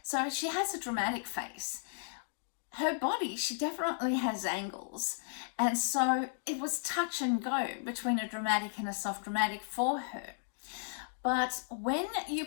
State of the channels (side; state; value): right; silent; digital silence